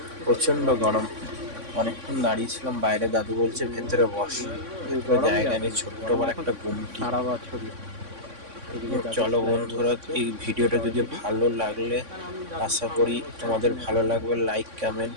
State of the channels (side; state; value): left; late; 3.6 ms